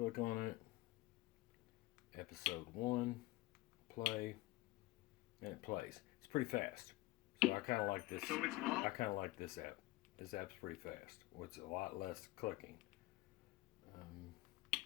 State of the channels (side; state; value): right; quieter; 19.8 dB